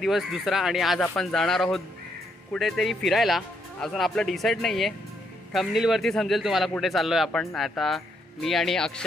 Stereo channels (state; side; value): normal; both; correlation 0.75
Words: दुसरा आणि आज आपण जाणार आहोत कुठेतरी फिरायला. अजून आपलं डिसाईड नाही आहे. थंबनेलवरती समजेल तुम्हाला कुठे चाललो आहे आपण. आता मी आणि